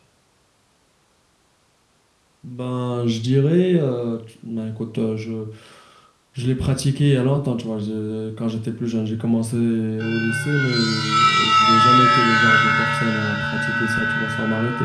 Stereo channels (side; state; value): both; identical; correlation 1.00